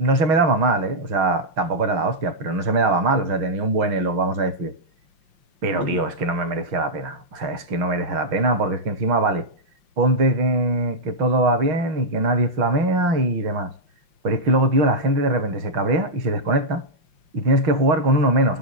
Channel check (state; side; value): late; left; 5.7 ms